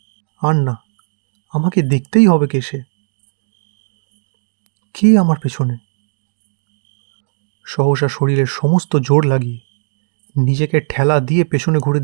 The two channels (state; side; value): silent; left; digital silence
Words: আর না, আমাকে দেখতেই হবে কে সে। কে আমার পেছনে? সহসা শরীরের সমস্ত জোর লাগিয়ে নিজেকে ঠেলা দিয়ে পেছনে ঘুরে